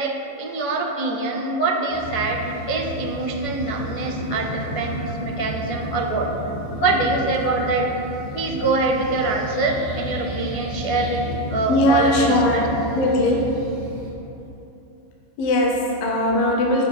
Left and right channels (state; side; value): late; right; 15 ms